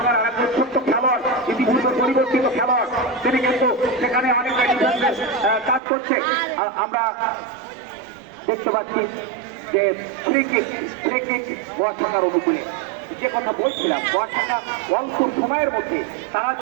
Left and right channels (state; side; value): drops out; left; at 5.8 s